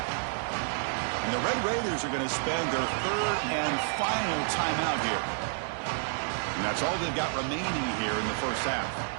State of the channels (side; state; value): left; silent; 58 dB below the other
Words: And the Red Raiders are going to spend their 3rd and final timeout here. And that's all they've got remaining here in the 1st half.